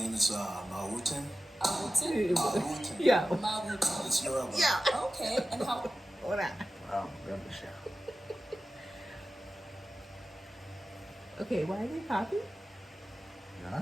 is Mawutin. Awutin? Mawutin. Yeah. Mawutin. It's Yoruba. Yeah. Okay, and how? Hold on. Oh, remember the show. Okay, why are they popping? Yeah,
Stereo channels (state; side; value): normal; both; correlation 0.94